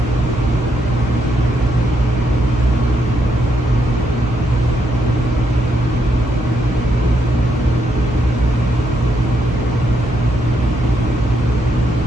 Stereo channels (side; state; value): both; normal; correlation 0.78